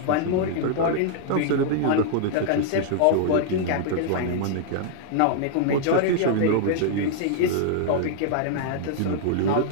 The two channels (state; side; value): different; both; correlation -0.01